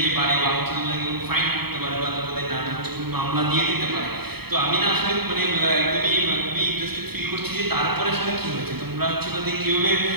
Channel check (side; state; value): left; late; 0.96 ms